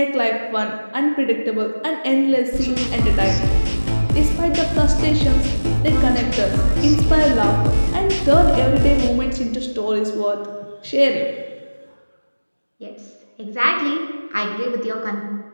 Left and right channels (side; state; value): both; inverted; correlation -1.00